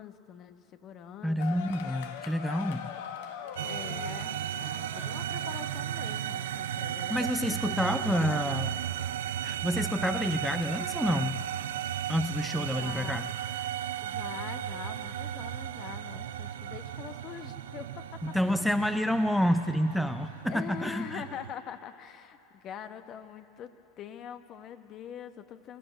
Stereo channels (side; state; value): both; normal; correlation 0.54